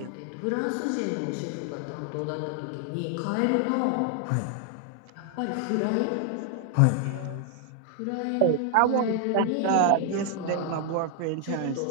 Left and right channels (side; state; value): both; different; correlation 0.00